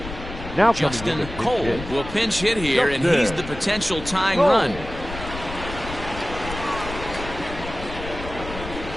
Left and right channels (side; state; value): left; noise; rumble, 11 dB below the sound